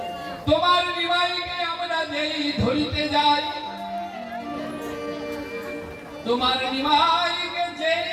তোমার নিমাইকে আমরা যেই ধরিতে যাই, তোমার নিমাইকে যে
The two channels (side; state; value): both; identical; correlation 1.00